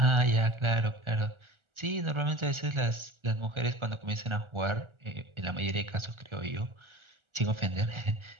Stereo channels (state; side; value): late; left; 1.4 ms